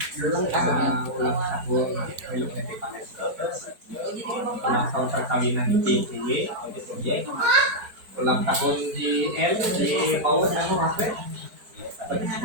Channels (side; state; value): left; late; 4.4 ms